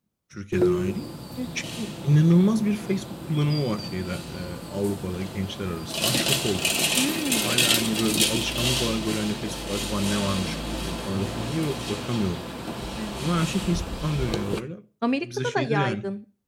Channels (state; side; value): identical; both; correlation 1.00